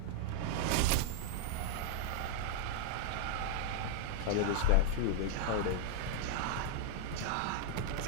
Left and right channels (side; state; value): both; different; correlation 0.00